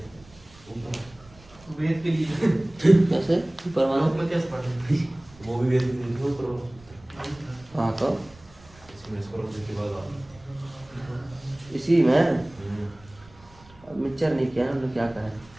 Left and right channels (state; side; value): noise; right; rumble, 24 dB below the sound